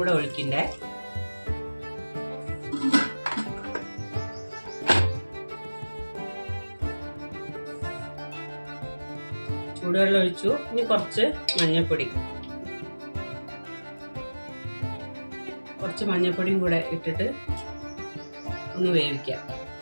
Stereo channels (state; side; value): inverted; both; correlation -1.00